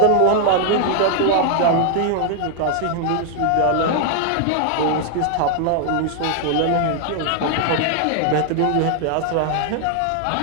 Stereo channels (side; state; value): both; different; correlation 0.00